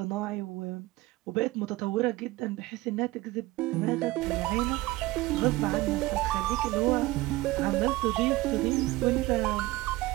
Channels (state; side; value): quieter; left; 18.8 dB